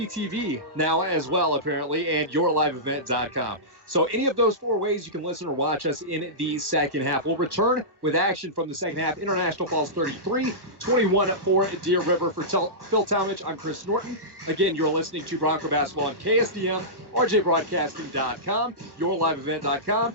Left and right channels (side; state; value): left; late; 1.3 ms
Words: TV now as well, apparently, and yourliveevent.com. So any of those 4 ways you can listen or watch us in the second half. We'll return with action from the second half. International Falls 33, 21 for Deer River. For Phil Talmadge, I'm Chris Norton. Again, you're listening to Bronco Basketball on KSDM, RJBroadcasting.com, yourliveevent.com,